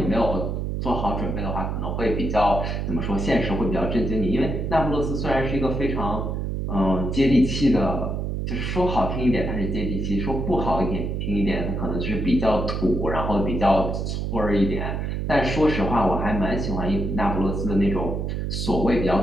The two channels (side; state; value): right; noise; hum, 2 dB below the sound